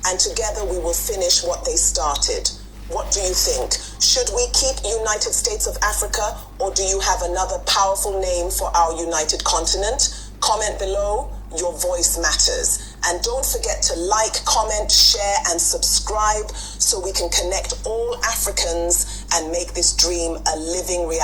and together we will finish what they started. What do you think? Should we keep United States of Africa, or do you have another powerful name for our united continent? Comment below. Your voice matters. And don't forget to like, comment, share, and subscribe so we can connect all Africans and make this dream a living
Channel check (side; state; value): both; identical; correlation 1.00